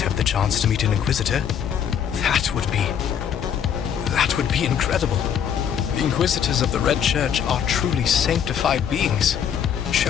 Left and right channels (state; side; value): quieter; right; 8.5 dB